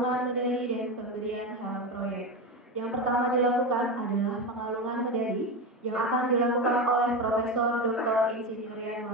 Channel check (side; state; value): both; normal; correlation 0.18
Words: medali dan pemberian helm proyek. Yang pertama dilakukan adalah pengalungan medali yang akan dilakukan oleh Profesor Dr. Insinyur